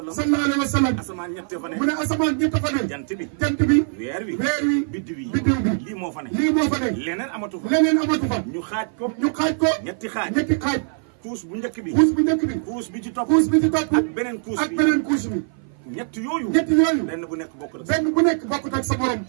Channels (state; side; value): silent; left; 55 dB below the other